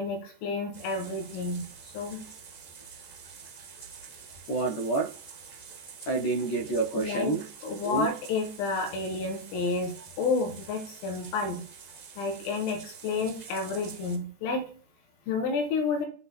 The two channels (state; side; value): late; right; 14 ms